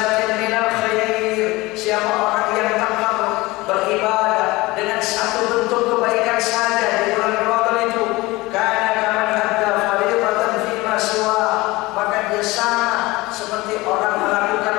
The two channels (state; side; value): quieter; right; 21.1 dB